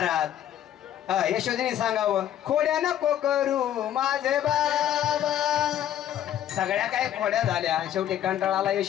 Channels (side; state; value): right; quieter; 11.2 dB